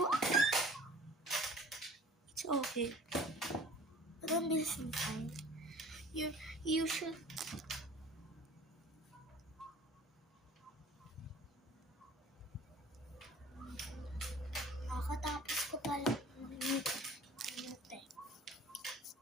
It's okay. But ang bilis ng time. You should... Nakatapos ko pala mag-mute.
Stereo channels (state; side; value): normal; both; correlation 0.46